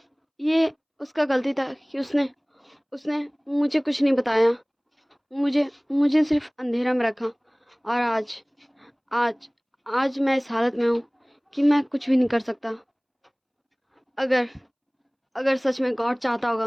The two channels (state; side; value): identical; both; correlation 1.00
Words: ये उसका गलती था कि उसने मुझे कुछ नहीं बताया, मुझे सिर्फ अंधेरा में रखा। और आज मैं इस हालत में हूँ कि मैं कुछ भी नहीं कर सकता। अगर सच में गॉड चाहता होगा